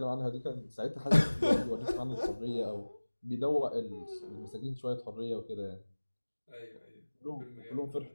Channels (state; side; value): inverted; both; correlation -1.00